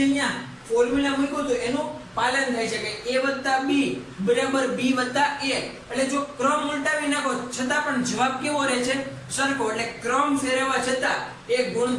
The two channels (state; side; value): identical; both; correlation 1.00